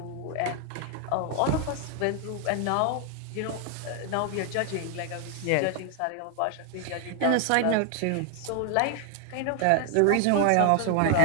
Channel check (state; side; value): different; both; correlation 0.00